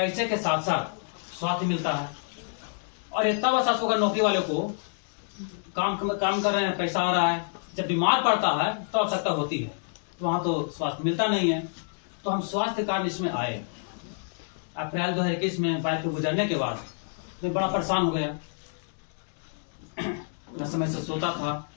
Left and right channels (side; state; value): right; silent; digital silence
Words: के साथ साथ स्वास्थ्य मिलता है, और इतना बस होगा नौकरी वाले को, काम कर रहे हैं, पैसा आ रहा है, जब बीमार पड़ता है तो आवश्यकता होती है, तो वहाँ तो स्वास्थ्य मिलता नहीं है। तो हम स्वास्थ्य कार्ड इसमें आए। अप्रैल 2021 में बाइक पे गुजरने के बाद मैं बड़ा परेशान हो गया। न समय से सोता था,